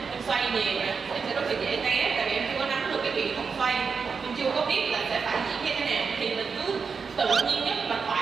em xoay nhiều nè, em sẽ rất là dễ té, tại vì em chưa có nắm được cái kỹ thuật xoay, em chưa có biết là sẽ phải diễn như thế nào, thì mình cứ tự nhiên nhất và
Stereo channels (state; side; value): quieter; left; 5.4 dB